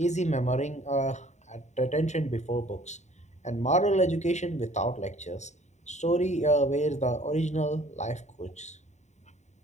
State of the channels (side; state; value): right; late; 0.34 ms